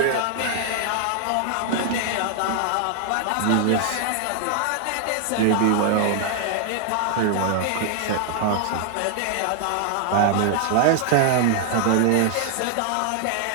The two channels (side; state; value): both; different; correlation 0.00